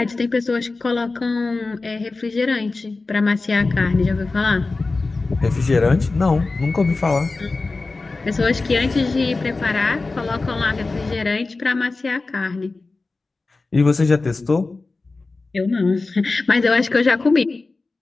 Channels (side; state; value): right; quieter; 3.6 dB